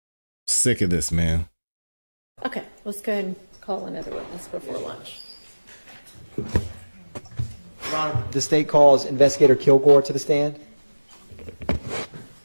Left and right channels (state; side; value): inverted; both; correlation -1.00